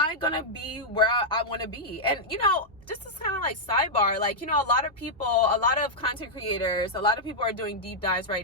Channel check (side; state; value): both; normal; correlation -0.07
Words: going to be where I want to be? And, you know, just this kind of like sidebar, like, you know, a lot of content creators, a lot of people are doing deep dives